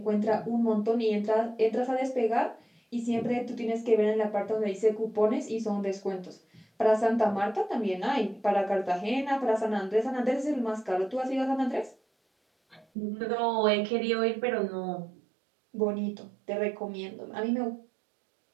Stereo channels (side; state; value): left; drops out; at 12.9 s